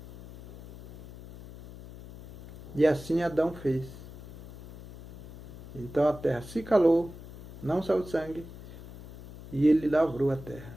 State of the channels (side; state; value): left; noise; hum, 15 dB below the sound